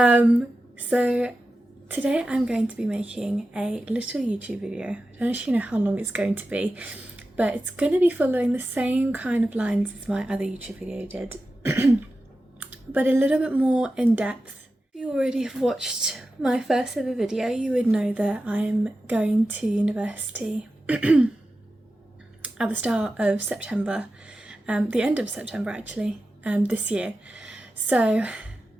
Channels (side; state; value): both; normal; correlation 0.92